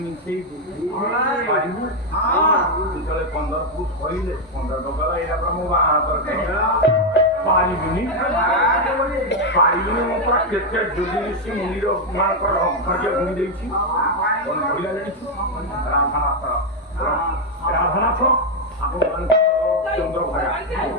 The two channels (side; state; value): both; normal; correlation 0.02